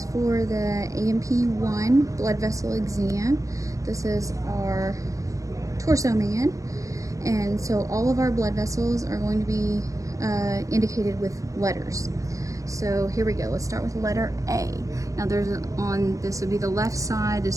for the AMP1 blood vessel exam. This is our torso man. And so all of our blood vessels are going to be indicated with letters. So here we go. Let's start with letter A. Now this would be the left side,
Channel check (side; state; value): left; late; 0.16 ms